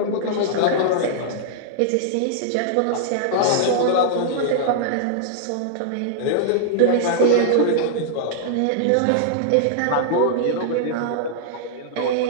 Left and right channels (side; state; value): both; different; correlation -0.01